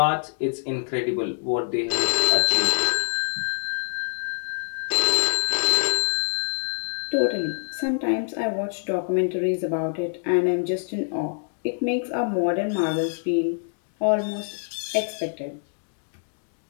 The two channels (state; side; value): silent; right; digital silence